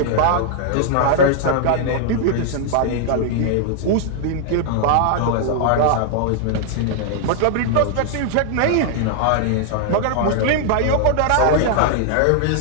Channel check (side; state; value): both; different; correlation 0.00